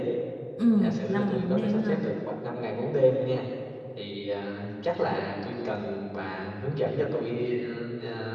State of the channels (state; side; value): identical; both; correlation 1.00